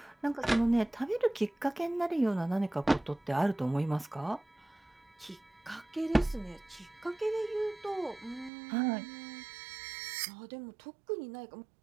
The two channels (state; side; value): drops out; left; at 8.5 s